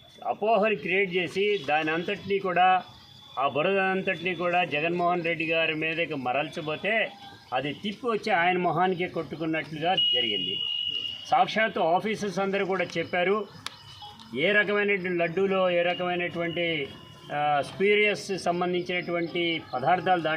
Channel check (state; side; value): identical; both; correlation 1.00